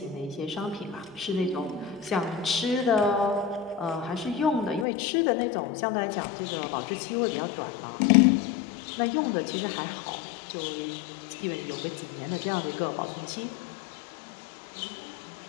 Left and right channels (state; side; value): drops out; right; at 4.9 s